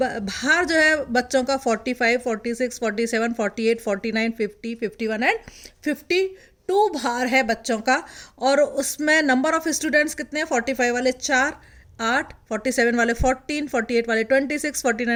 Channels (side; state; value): both; identical; correlation 1.00